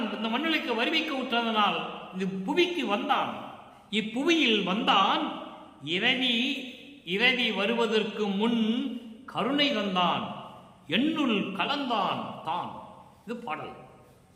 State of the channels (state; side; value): identical; both; correlation 1.00